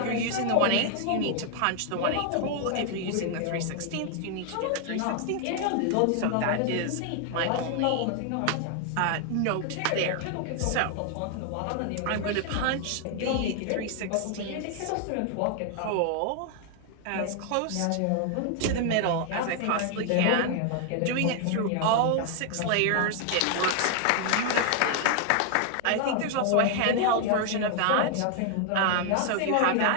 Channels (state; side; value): different; both; correlation 0.00